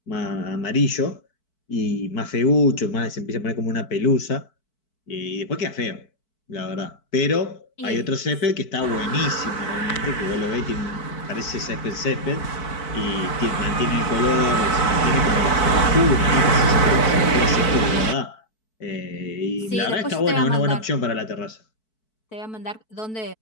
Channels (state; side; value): late; right; 4.6 ms